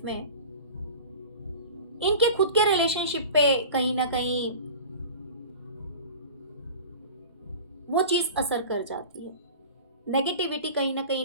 में, इनके खुद के रिलेशनशिप पे कहीं ना कहीं वो चीज असर कर जाती है। नेगेटिविटी कहीं ना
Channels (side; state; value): both; inverted; correlation -0.38